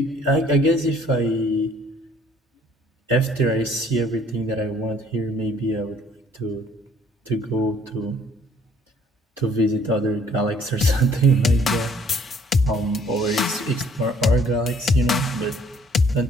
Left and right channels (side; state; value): both; normal; correlation 0.60